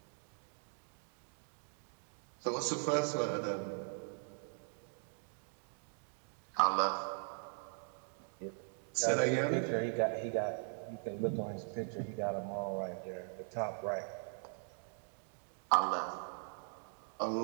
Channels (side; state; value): left; silent; 51 dB below the other